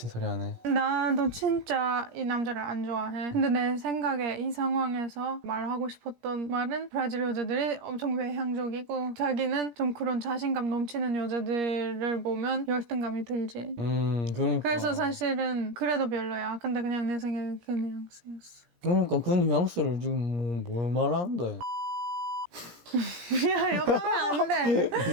소리 하네. 나도 진짜 이 남자를 안 좋아해. 근데 내 생각에 이 상황에서 말하고 싶었던 말은 브라질 여자들이 엄청 외향적이고 자기는 좀 그런 자신감 넘치는 여자들을 보면 열등감이 들지. 그러니까. 그래서 사실은 그래도 별로야. 근데 그냥 내 생각에 그 뉘앙스였어. 그러니까 그 뉘앙스를 지금 뭘 말하는데? 야, 욕하면 안 돼.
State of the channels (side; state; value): left; late; 17 ms